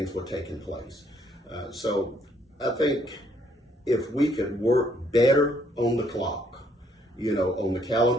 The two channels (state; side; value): normal; both; correlation 0.68